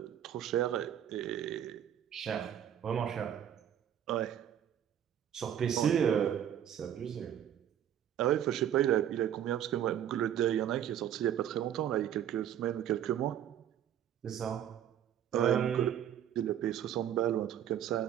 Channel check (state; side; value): quieter; left; 10.2 dB